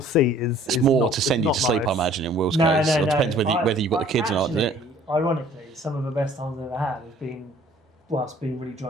is It's more not, to send you not to sleep, I nice. imagine, in Will's No, case. no, It no. depends whether you've got the kids or not, doesn't it? Actually, ironically, some of the best times I've ever had has been whilst being really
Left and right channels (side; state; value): both; normal; correlation 0.54